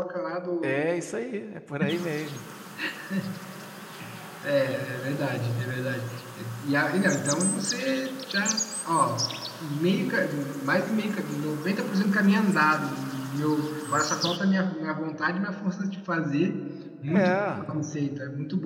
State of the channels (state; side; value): identical; both; correlation 1.00